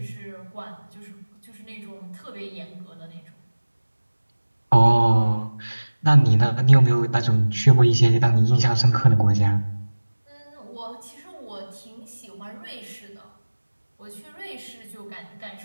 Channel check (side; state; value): both; inverted; correlation -1.00